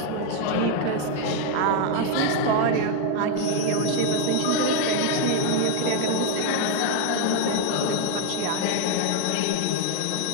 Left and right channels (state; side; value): different; both; correlation 0.01